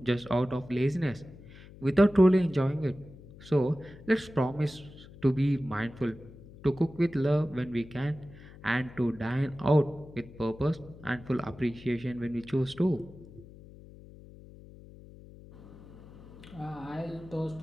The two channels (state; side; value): noise; left; hum, 19 dB below the sound